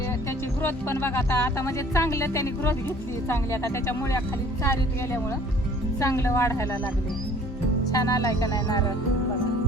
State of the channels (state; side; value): normal; both; correlation 0.52